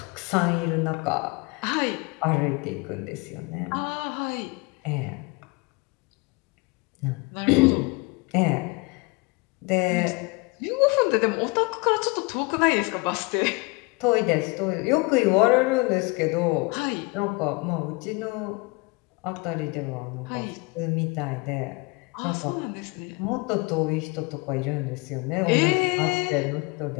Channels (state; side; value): quieter; right; 26.8 dB